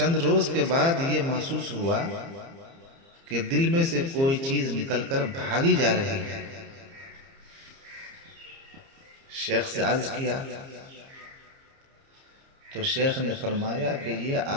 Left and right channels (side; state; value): left; late; 30 ms